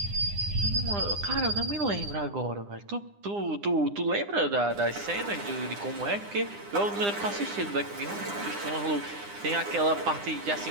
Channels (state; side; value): late; left; 9.9 ms